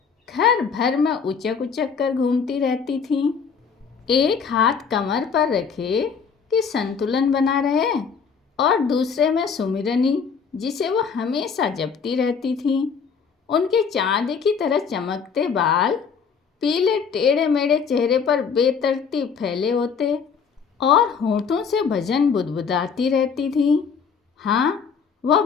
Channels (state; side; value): quieter; right; 6.1 dB